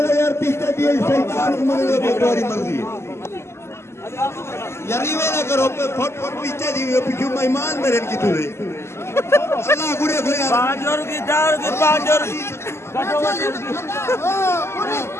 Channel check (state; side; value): late; right; 0.13 ms